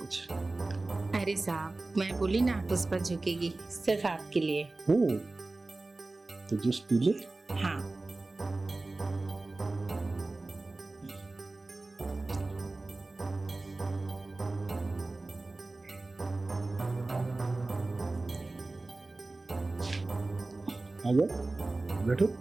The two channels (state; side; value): quieter; left; 3.2 dB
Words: अरे साहब, मैं बोली ना पुष्पा झुकेगी, सिर्फ आपके लिए। तो जूस पी ले। हाँ। आजा, बैठो।